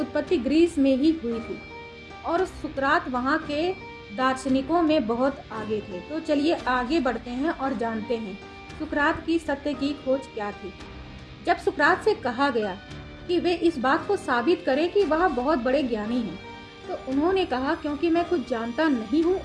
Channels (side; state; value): both; identical; correlation 1.00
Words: ग्रीस में ही हुई थी और सुकरात वहाँ के दार्शनिकों में बहुत आगे थे। तो चलिए आगे बढ़ते हैं और जानते हैं सुकरात की सत्य की खोज क्या थी। जब सुकरात से कहा गया कि वे इस बात को साबित करें कि वह बहुत बड़े ज्ञानी हैं, तो उन्होंने कहा क्योंकि मैं कुछ जानता नहीं हूँ